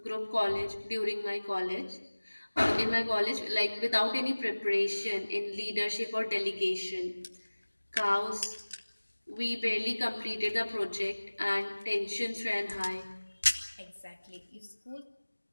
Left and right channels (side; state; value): both; inverted; correlation -1.00